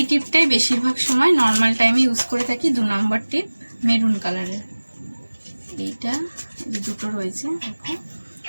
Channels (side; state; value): both; inverted; correlation -1.00